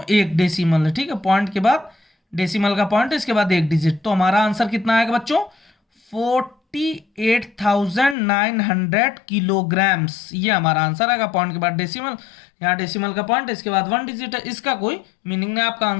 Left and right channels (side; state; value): right; drops out; at 8.2 s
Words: एक डेसिमल है, ठीक है, पॉइंट के बाद डेसिमल का पॉइंट, इसके बाद एक डिजिट। तो हमारा आंसर कितना आएगा बच्चों, 48,900 किलोग्राम्स, ये हमारा आंसर आएगा। पॉइंट के बाद डेसिमल, यहाँ डेसिमल का पॉइंट, इसके बाद 1 डिजिट है, इसका कोई मीनिंग नहीं, आपका